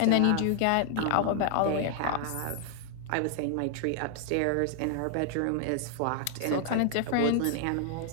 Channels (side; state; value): both; different; correlation 0.00